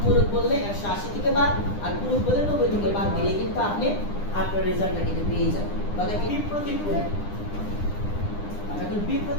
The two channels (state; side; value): late; right; 9.9 ms